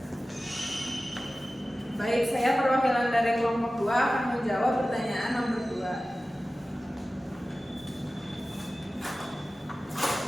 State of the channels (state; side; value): normal; both; correlation 0.96